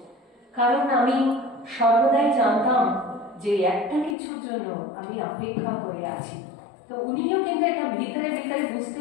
কারণ আমি সর্বদাই জানতাম যে একটা কিছুর জন্য আমি অপেক্ষা করে আছি। তো উনিও কিন্তু একটা ভিতরে ভিতরে বুঝতে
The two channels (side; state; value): right; drops out; at 4.2 s